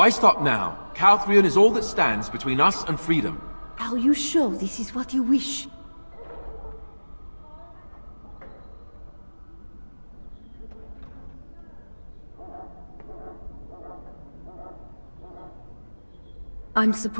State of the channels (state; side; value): inverted; both; correlation -1.00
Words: stop now? Calthrion is all that stands between us and freedom. Are you sure this is what you wish? I'm